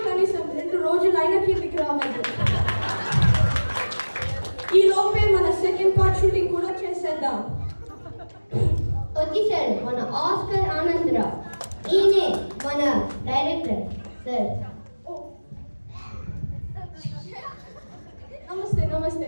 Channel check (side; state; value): both; inverted; correlation -1.00